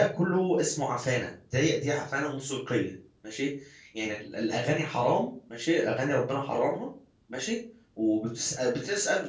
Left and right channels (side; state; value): both; identical; correlation 1.00